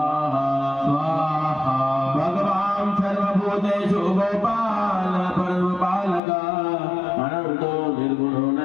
स्वाहा भगवान् सर्वभूतेषु गोपाल परमपालक अनंतो निर्गुणो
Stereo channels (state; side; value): drops out; right; at 6.2 s